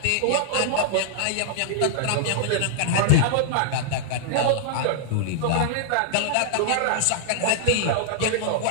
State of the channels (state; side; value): different; both; correlation -0.01